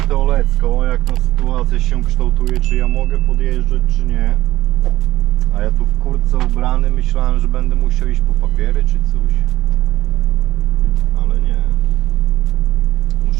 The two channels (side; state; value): left; quieter; 15.7 dB